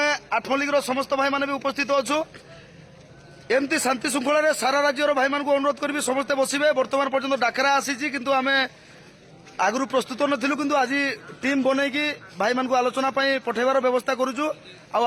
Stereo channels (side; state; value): both; identical; correlation 1.00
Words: आठमल्लिक समस्त भाई मैंने भी उपस्थित अच्छु एमती शांति श्रृंखला सारा राज्यर भाई मान अनुरोध करी समस्ते बसवे। बर्तमान पर्यटन डाकरा आसी किंतु आम आगु प्रस्तुत नथिलु किंतु आज टीम बनईकी भाई मान आलोचना पठेबार व्यवस्था करुचु।